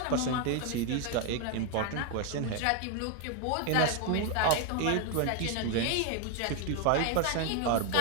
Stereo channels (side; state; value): both; different; correlation 0.01